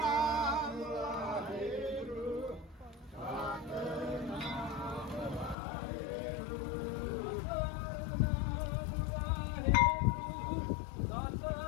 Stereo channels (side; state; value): right; drops out; at 5.6 s